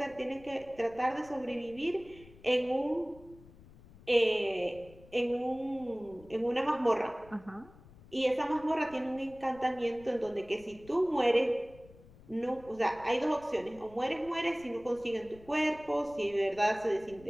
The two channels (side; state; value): left; noise; rumble, 22 dB below the sound